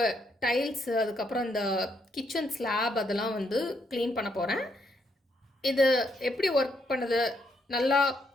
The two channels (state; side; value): normal; both; correlation 0.75